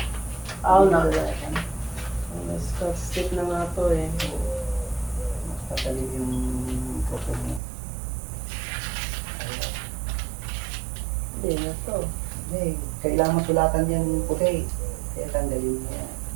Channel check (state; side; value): drops out; left; at 7.6 s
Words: Aw na. Scotch stick na nga to eh. Mas patalim yung puto mo. Hindi na to. Hindi, kailangan masulatan yung puti. Kaya tanggalin mo yan.